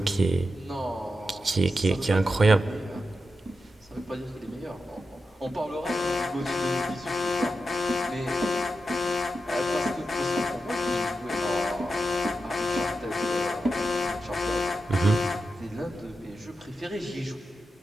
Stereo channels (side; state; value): both; normal; correlation 0.89